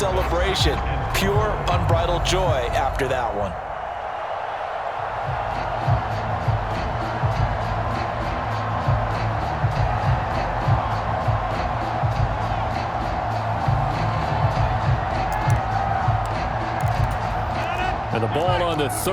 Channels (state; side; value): identical; both; correlation 1.00